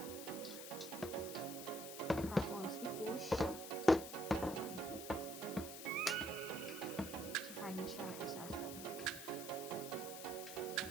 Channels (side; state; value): left; noise; hiss, 9 dB below the sound